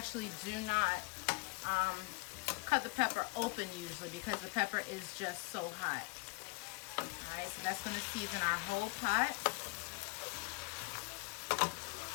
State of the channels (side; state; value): right; quieter; 26.9 dB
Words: do not cut the pepper open usually, because the pepper is just so hot. All right, so that's going to season our whole pot.